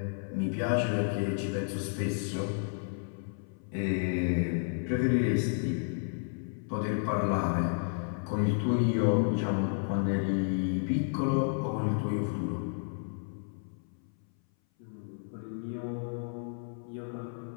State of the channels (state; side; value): silent; right; 57 dB below the other